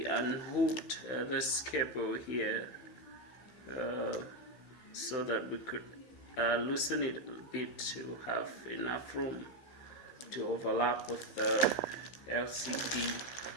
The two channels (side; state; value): right; late; 16 ms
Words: unhooked this cable here so that we could loosen it a bit to have enough room to overlap with the LCD